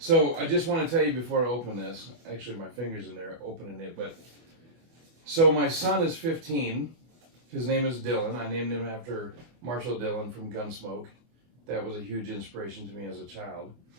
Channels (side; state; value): left; late; 24 ms